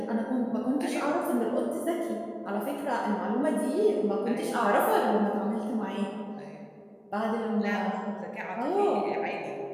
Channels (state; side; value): identical; both; correlation 1.00